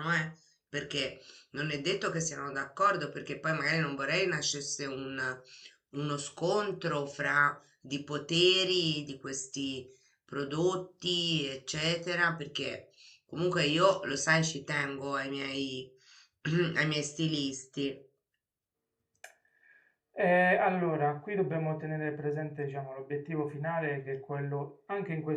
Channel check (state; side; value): identical; both; correlation 1.00